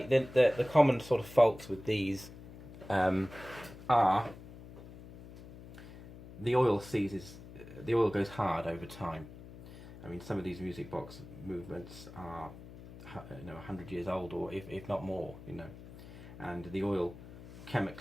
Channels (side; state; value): left; noise; hum, 16 dB below the sound